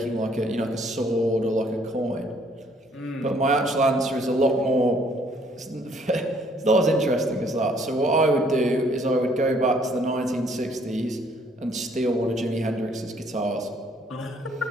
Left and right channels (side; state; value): both; normal; correlation 0.64